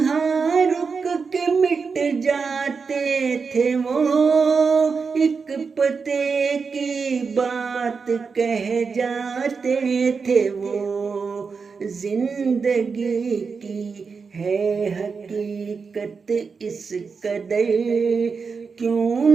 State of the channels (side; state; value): left; quieter; 5.2 dB